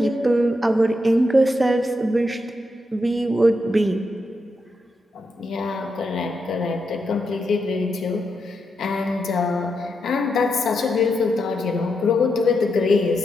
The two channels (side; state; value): both; normal; correlation 0.84